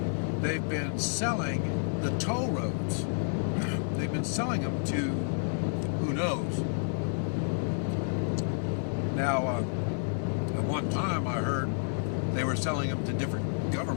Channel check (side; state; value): right; silent; 58 dB below the other